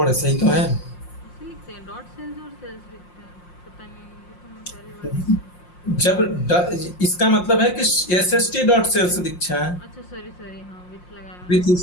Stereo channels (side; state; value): right; late; 5.6 ms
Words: है, सही तो है। ऐसे लिखते हैं डॉट सेल्स और सेल्स लिखते हैं, पता नहीं, ये तो मैं पहली बार देख रही हूँ। इसका मतलब है कि SST डॉट सेल्स दीक्षा है, अच्छा सॉरी सॉरी, हाँ विथ लगाया विथ मैंने।